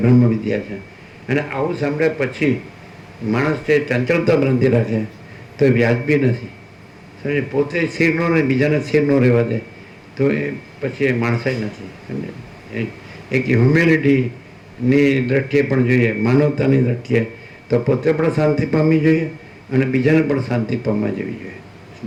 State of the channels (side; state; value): both; identical; correlation 1.00